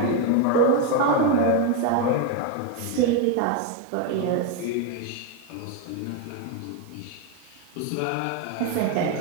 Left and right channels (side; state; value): both; different; correlation 0.02